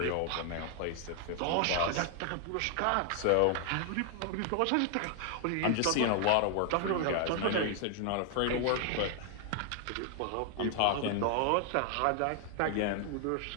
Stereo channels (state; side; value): different; both; correlation 0.00